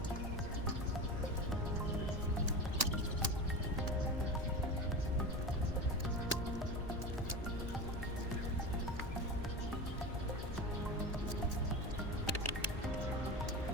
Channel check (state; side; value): normal; both; correlation 0.26